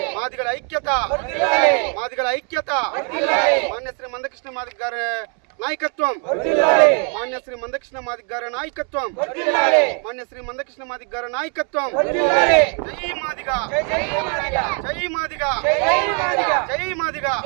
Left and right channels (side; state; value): left; quieter; 39.2 dB